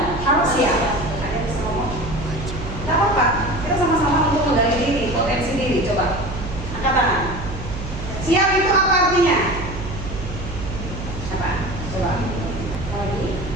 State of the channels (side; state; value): right; noise; hum, 9 dB below the sound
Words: harus siap. Ada yang bisa ngomong? Gak apa-apa. Kita sama-sama untuk menggali diri, potensi diri. Coba angkat tangan. Siap itu apa artinya? Apa? Coba. Lagi.